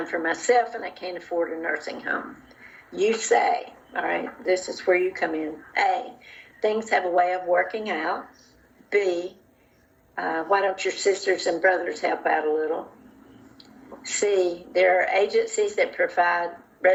for myself and I can't afford a nursing home. You say, all right, this is where you come in. A, things have a way of working out. B, why don't your sisters and brothers help out a little? C, there are agencies that provide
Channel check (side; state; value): both; identical; correlation 1.00